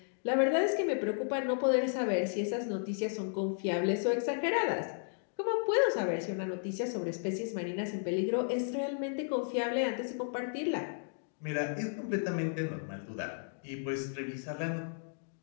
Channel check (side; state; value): right; silent; digital silence